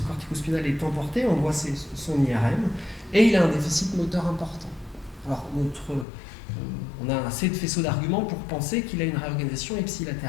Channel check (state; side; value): drops out; right; at 6.1 s